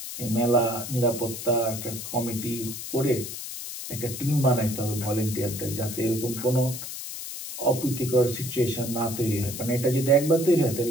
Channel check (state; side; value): noise; left; hiss, 8 dB below the sound